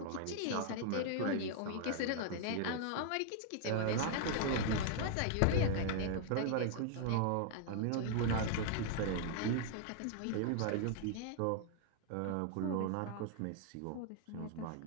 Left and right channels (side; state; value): both; different; correlation 0.00